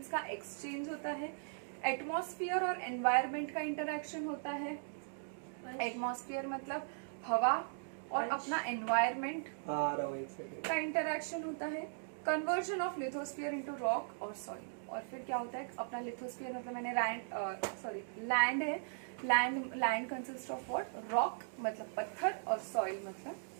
का एक्सचेंज होता है। एटमॉस्फेयर और एनवायरमेंट का इंटरैक्शन होता है। एटमॉस्फेयर मतलब हवा और अपना एनवायरमेंट का इंटरैक्शन होता है। Conversion of lithosphere into rock और सॉइल। और फिर क्या होता है? अपना लिथोस्फीयर मतलब मैंने लैंड है, land consist of what? Rock मतलब पत्थर और सॉइल मतलब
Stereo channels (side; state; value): left; silent; digital silence